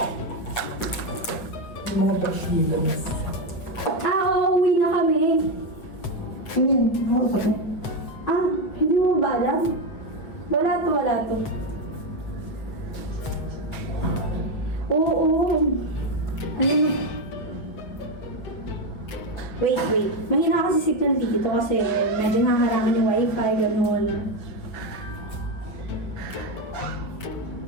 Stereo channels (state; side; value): late; right; 8.1 ms